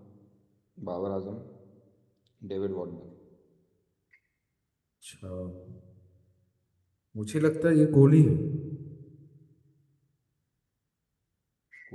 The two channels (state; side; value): identical; both; correlation 1.00